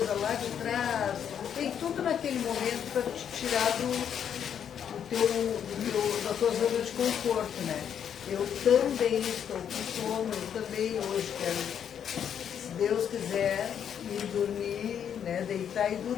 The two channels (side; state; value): right; quieter; 8.6 dB